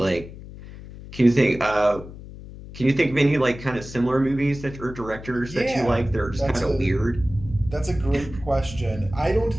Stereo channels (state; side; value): noise; left; hum, 14 dB below the sound